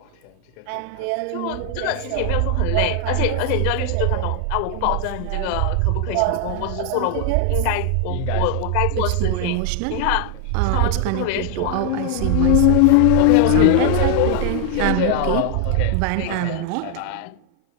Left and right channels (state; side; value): different; both; correlation 0.00